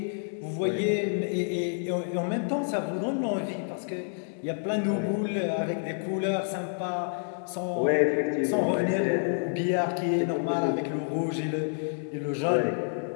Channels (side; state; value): right; silent; digital silence